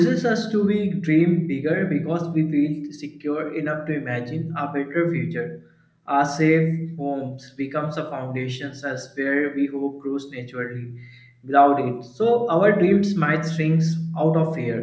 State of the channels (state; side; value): identical; both; correlation 1.00